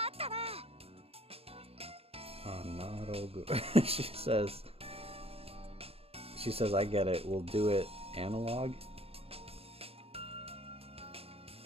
She says, I get it. We'll do it analog.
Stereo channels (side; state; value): left; late; 0.28 ms